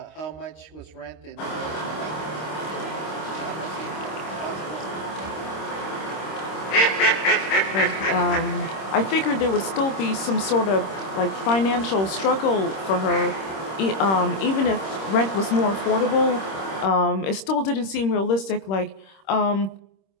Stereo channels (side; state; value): right; late; 26 ms